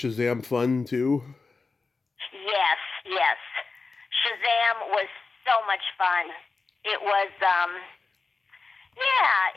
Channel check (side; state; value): right; quieter; 4.1 dB